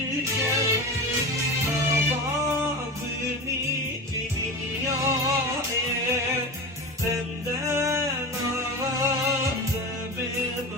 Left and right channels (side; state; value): both; normal; correlation 0.27